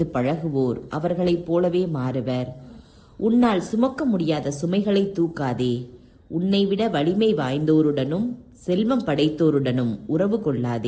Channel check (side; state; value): both; identical; correlation 1.00